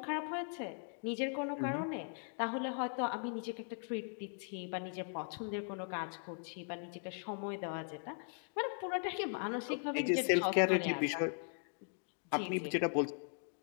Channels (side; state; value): right; silent; 52 dB below the other